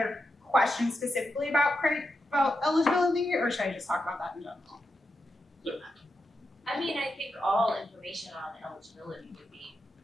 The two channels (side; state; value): both; normal; correlation 0.87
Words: questions specifically about eligibility, or should I just talk about that in general? I mean, I think all information on eligibility would be